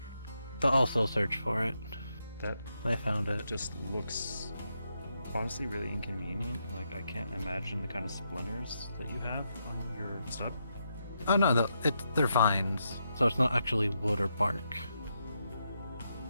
to also search for it. That They found it. just looks honestly really inconvenient. Like, I can't imagine the kind of splinters that you have on your stud. Oh no, they're vines, so it's not actually wood or bark.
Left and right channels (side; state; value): both; inverted; correlation -0.82